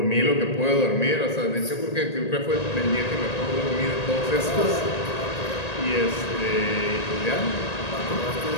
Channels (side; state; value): right; late; 1.8 ms